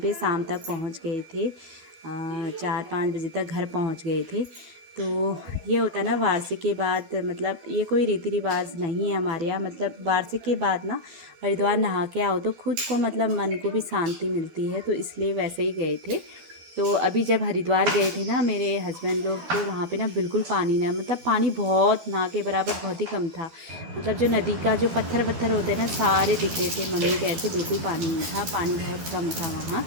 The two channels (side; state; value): left; late; 12 ms